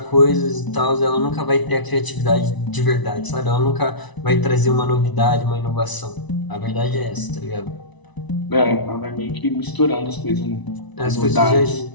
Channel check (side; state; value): right; late; 1.0 ms